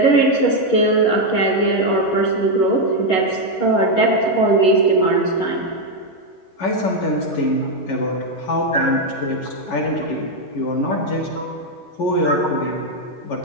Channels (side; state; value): right; late; 11 ms